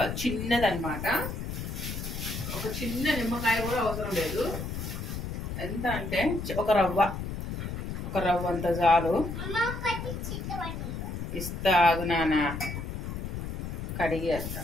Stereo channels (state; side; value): noise; left; rumble, 5 dB below the sound